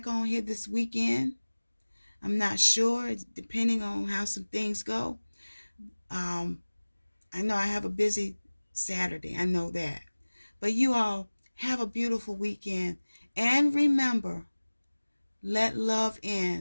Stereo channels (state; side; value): inverted; both; correlation -1.00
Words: on here this weekend. I'm not sure, depending on how some things go. I know I have a busy Saturday. I know that. But you all have a beautiful weekend. And remember, let love